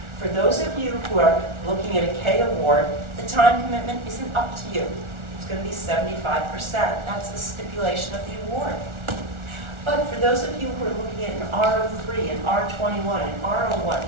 For those of you who are looking at a K award, the time commitment isn't up to you. It's going to be 75%. That's the stipulation of the award. But for those of you who are looking at an R03, an R21, an R01,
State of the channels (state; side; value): late; left; 1.4 ms